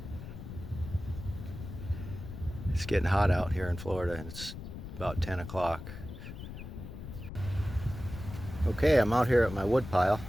It's getting hot out here in Florida, and it's about 10 o'clock. Okay, I'm out here at my wood pile.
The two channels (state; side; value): noise; left; rumble, 10 dB below the sound